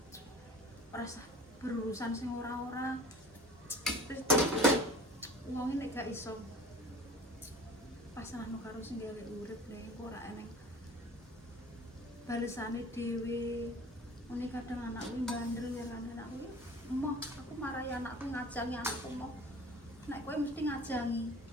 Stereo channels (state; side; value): normal; both; correlation 0.43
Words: rasa berurusan sing ora-ora terus wong nek gak iso pasrahno karo sing gawe urip nek ora eneng balesane dhewe ngene kadang anakku bandel ya kan anakku emoh aku marahi anakku ngajangi anakku emoh nek kowe mesti ngajangi